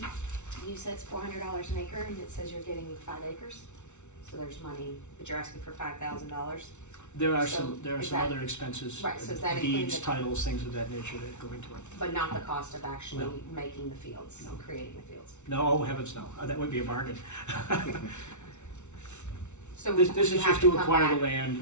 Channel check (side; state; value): right; late; 0.83 ms